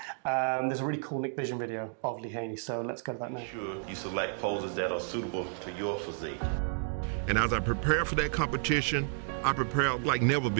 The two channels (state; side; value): silent; left; 57 dB below the other